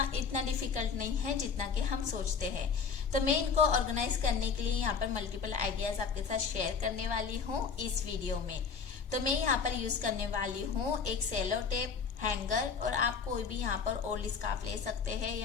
इतना डिफिकल्ट नहीं है जितना कि हम सोचते हैं। तो मैं इनको ऑर्गेनाइज करने के लिए यहाँ पर मल्टीपल आइडियाज आपके साथ शेयर करने वाली हूँ इस वीडियो में। तो मैं यहाँ पर यूज करने वाली हूँ एक सेलो टेप, हैंगर, और आप कोई भी यहाँ पर ओल्ड स्कार्फ ले सकते हैं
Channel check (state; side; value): quieter; right; 5.8 dB